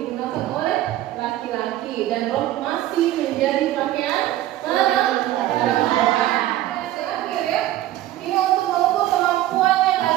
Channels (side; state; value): left; quieter; 14.3 dB